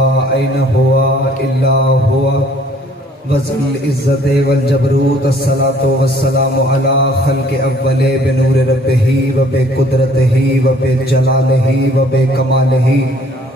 ऐन हुआ इल्ला हुआ वज़ल इज़्ज़त वल जबरूत अस्सलातु वस्सलामु अला खल्क़ि अव्वले बिनूर रब्बिही व बिक़ुदरतिही व बिजलालिही व बिकमालिही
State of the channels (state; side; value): normal; both; correlation 0.58